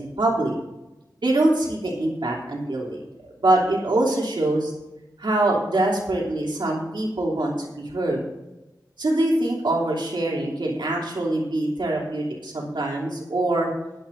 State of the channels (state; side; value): normal; both; correlation 0.82